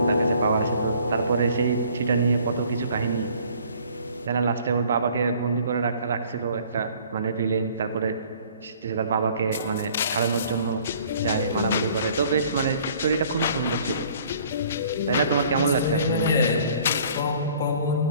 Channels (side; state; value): both; inverted; correlation -0.55